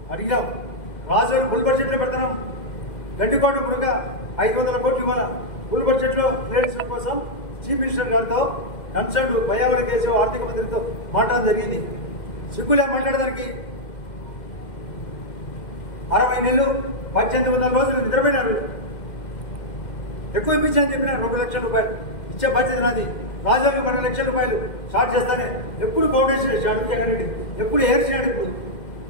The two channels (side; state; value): right; late; 2.1 ms